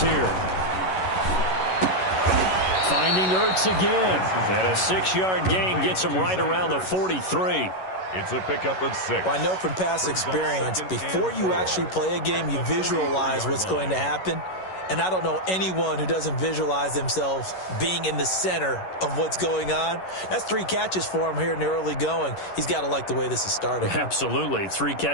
here. Finding Ertz again. And a 6-yard gain gets him right around the 43. It's a pickup of 6. Well, I know from past experience, before you actually play a game, you visualize what's going to happen. And I don't know anyone who doesn't visualize themselves being in the center of what's going on. That's 3 catches for him here in the early going. He's got to like the way this is starting. Absolutely. 3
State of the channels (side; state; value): right; late; 11 ms